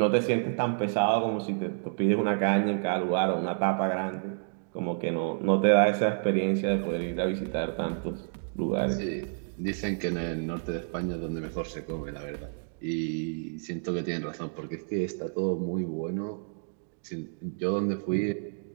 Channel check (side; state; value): left; silent; digital silence